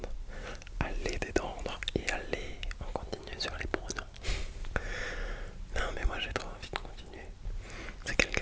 à les détendre et à les en continuer sur les pronoms. Non mais moi j'ai trop envie de continuer. C'est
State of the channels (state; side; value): identical; both; correlation 1.00